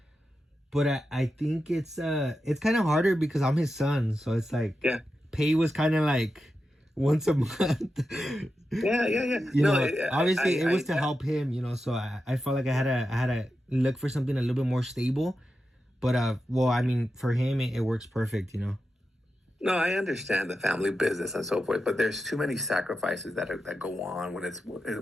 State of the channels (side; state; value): both; normal; correlation 0.89